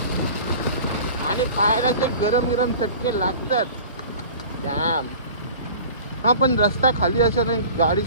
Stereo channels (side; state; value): both; inverted; correlation -0.40